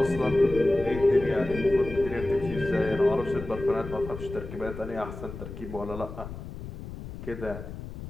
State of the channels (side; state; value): left; noise; rumble, 10 dB below the sound